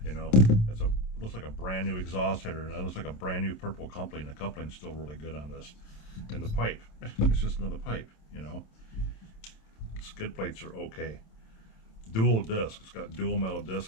you know, looks like a brand new exhaust header, and that looks like a brand new purple coupling. The coupling's still really good on this. And the pipe, it's just another pipe, you know. Skid plates are okay. Dual disc. It's got dual metal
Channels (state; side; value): late; right; 27 ms